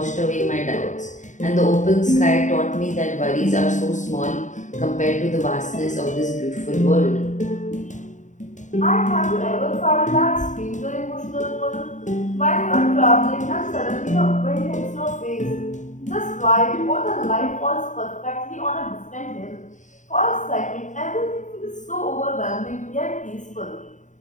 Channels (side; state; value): right; late; 0.36 ms